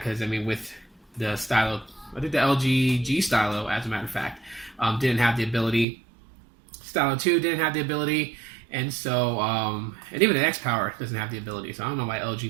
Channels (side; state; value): left; drops out; at 5.9 s